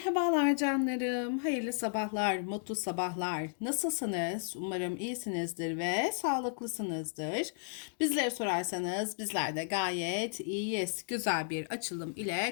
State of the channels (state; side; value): silent; right; digital silence